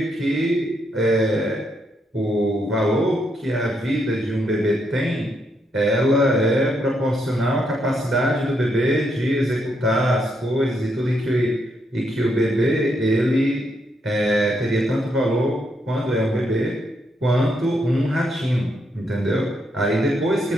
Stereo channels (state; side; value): normal; both; correlation 0.78